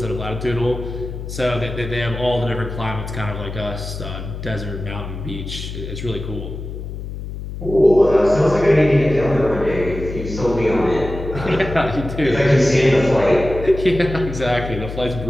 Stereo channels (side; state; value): left; noise; hum, 8 dB below the sound